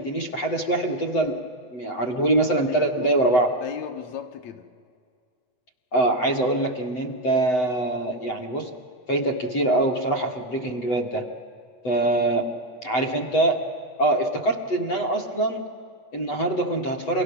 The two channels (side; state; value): right; late; 7.9 ms